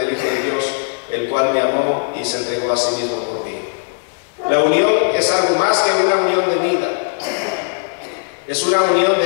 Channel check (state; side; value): silent; right; digital silence